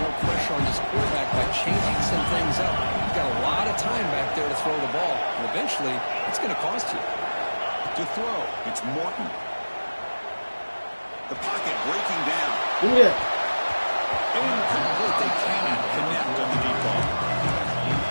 pressure on this quarterback by changing some things up. You've got a lot of time back there to throw the ball. And eventually, it's going to cost you. To throw, it's Morton. The pocket breaking down. Yeah. Incomplete. They cannot connect on the deep ball.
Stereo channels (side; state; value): both; inverted; correlation -1.00